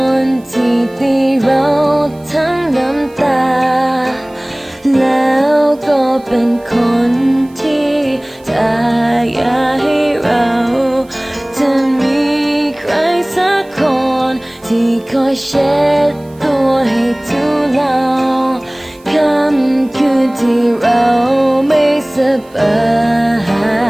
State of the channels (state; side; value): noise; right; hiss, 29 dB below the sound